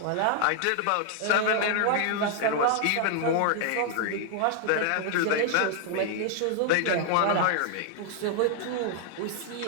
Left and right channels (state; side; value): different; both; correlation 0.00